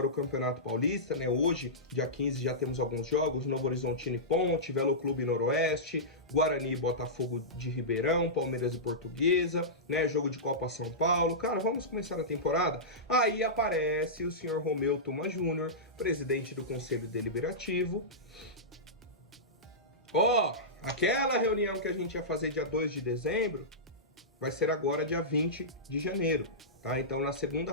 o Campeonato Paulista, né? Hoje, dia 15, já temos alguns jogos, Novo Horizontino e Ponte, Velo Clube Noroeste, Guarani e Botafogo de Ribeirão, Palmeiras e Portuguesa, né? Jogo de Copa São Paulo. Cara, vamos começar a temporada? Aí aparece o senhor Romeu Tuma Júnior, presidente do Conselho Deliberativo. Aquela reunião que a gente ia fazer dia 2 de dezembro vai ser agora dia 20 de janeiro, tá? Então, na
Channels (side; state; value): both; normal; correlation -0.15